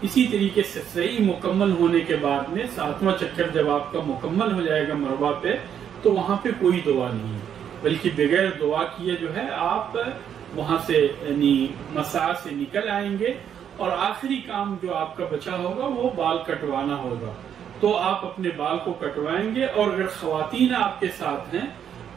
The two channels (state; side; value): quieter; left; 8.8 dB